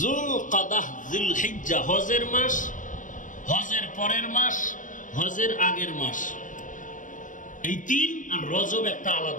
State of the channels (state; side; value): late; right; 0.37 ms